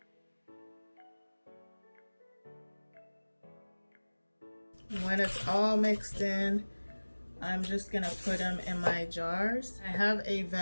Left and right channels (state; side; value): inverted; both; correlation -1.00